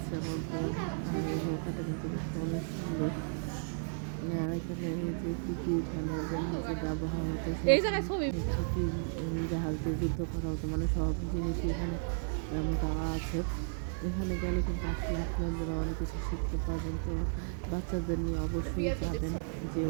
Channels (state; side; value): silent; left; digital silence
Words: আমার বোন। আর এই নৌকাটা কিন্তু দেখতে অনেক সুন্দর। আর এখানে যে কী যে ব্যবহার হতো, এই জায়গায় ছবি জাহাজ দিয়ে যুদ্ধ করা হতো, মানে সব জিনিসই এখানে দেওয়া আছে। এখানে গেলে কিন্তু আসলে আপনারা অনেক কিছু শিখতে পারবেন। তো বাচ্চাদের নিয়ে অবশ্যই যাবেন, যে